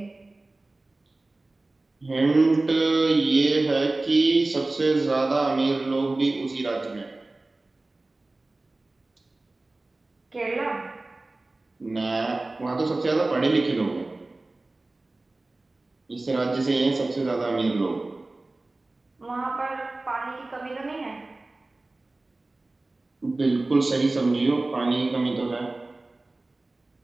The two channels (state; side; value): quieter; left; 3.0 dB